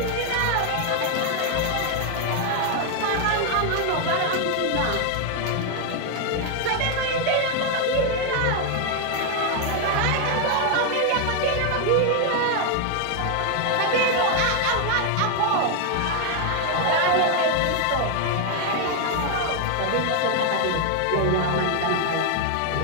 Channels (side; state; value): both; different; correlation 0.00